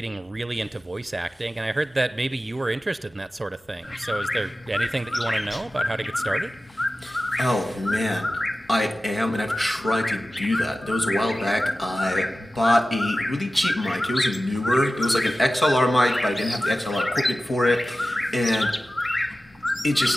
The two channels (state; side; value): normal; both; correlation 0.95